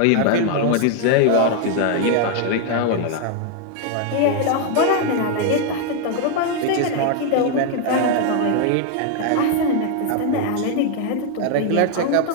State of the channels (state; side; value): different; both; correlation 0.00